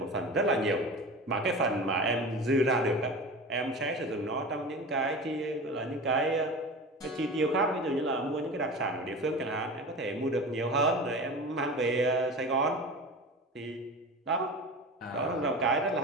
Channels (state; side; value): normal; both; correlation 0.32